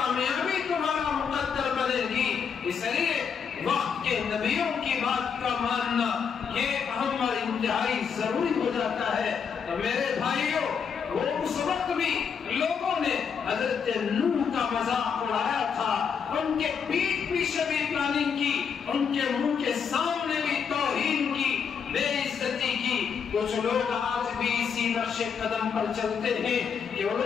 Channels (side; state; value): right; quieter; 6.7 dB